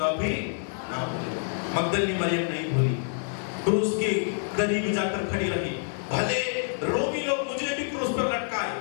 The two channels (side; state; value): right; silent; digital silence